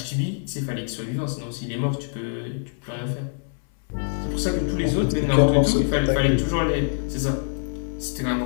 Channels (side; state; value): right; silent; 62 dB below the other